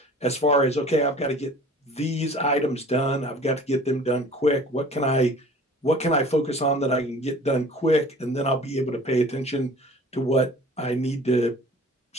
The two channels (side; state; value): both; normal; correlation 0.47